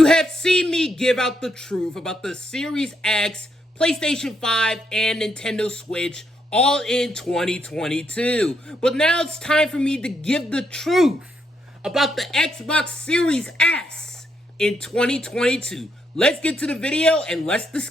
have seen me give out the truth about the Series X, PlayStation 5, and Nintendo Switch all in 2022. But now it's time for me to give the truth about the Xbox Series S in 2022. Let's get to the video and let's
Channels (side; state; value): both; normal; correlation 0.77